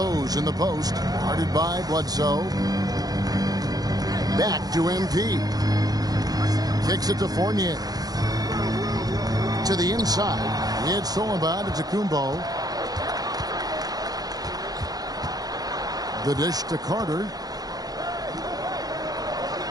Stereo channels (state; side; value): late; left; 0.19 ms